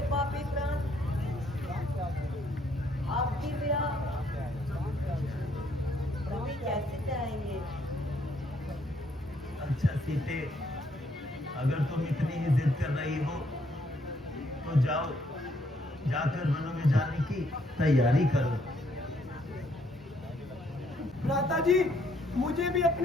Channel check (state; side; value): normal; both; correlation 0.69